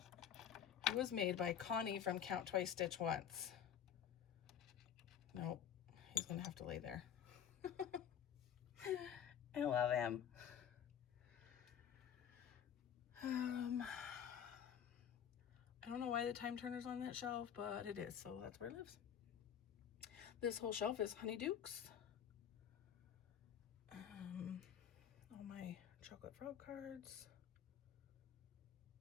It was made by Connie from Count Twice Stitch Once. Nope, he's gonna have to lay there. I love him. I don't know why the time turner's on that shelf, but it is, so that's where it lives. This whole shelf is Honeydukes. All my chocolate frog cards.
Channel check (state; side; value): quieter; right; 8.9 dB